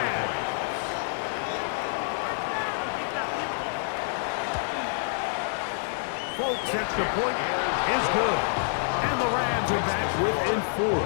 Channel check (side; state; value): right; silent; digital silence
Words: Folks, extra point is good. And the Rams are back within 4.